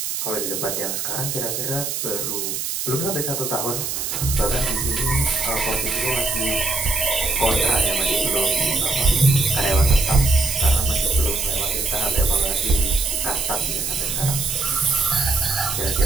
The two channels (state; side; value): noise; right; hiss, 3 dB below the sound